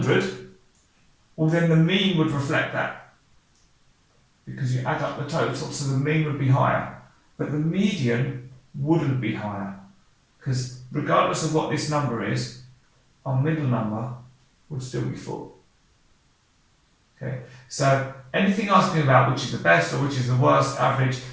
well, then the mean would reflect that, because you add up the total, so the mean would be higher. But the median wouldn't be higher, because regardless of what this number is, our middle number would still be 4. Okay, so anything asking about which is the best or which is the worst average,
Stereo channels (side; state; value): both; identical; correlation 1.00